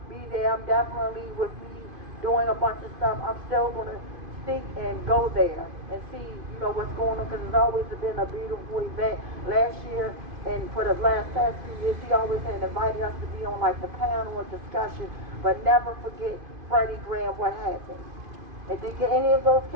be there. I'm definitely, with me doing a bunch of stuff, I'm still going to stick and go there and see, what's going on, because it's always been a beautiful event. Last year, and for the past few years, he always had invited us to be on like the panel or discussion, but never forget Freddie Gray and what happened. And did any of those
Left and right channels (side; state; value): left; late; 2.5 ms